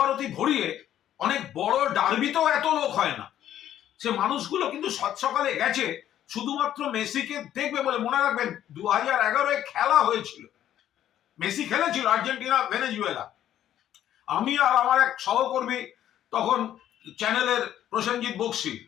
ভরিয়ে, অনেক বড় ডার্বিতেও এত লোক হয় না। সে মানুষগুলো কিন্তু সকালে গেছে শুধুমাত্র মেসিকে দেখবে বলে। মনে রাখবেন 2011 খেলা হয়েছিল, মেসি খেলেছিল আর্জেন্টিনা ভেনেজুয়েলা। আমি আর আমার এক সহকর্মী তখন চ্যানেলের প্রসেনজিৎ বক্সি,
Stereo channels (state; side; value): quieter; right; 11.4 dB